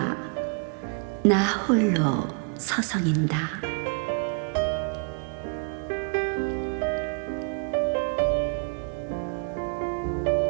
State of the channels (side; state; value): left; quieter; 38.4 dB